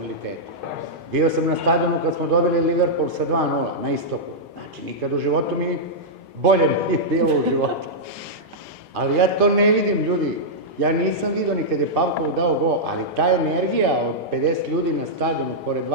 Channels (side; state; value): both; normal; correlation -0.09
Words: Bio sam na stadionu kad smo dobili Liverpool sa 2:0 na istoku. Znači, nikad u životu mi bolje nije bilo u životu. Ali ja to ne vidim, ljudi. Ja nisam vidio ni kad je Pavkov dao gol, ali ta energija od 50 ljudi na stadionu pored